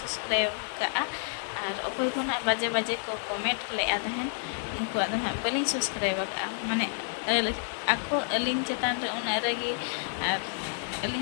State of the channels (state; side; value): silent; right; 58 dB below the other